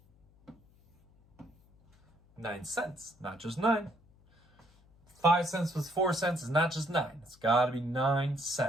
9 cents, not just 9. 5 cents plus 4 cents is not just 9. It's got to be 9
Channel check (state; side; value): noise; left; hum, 30 dB below the sound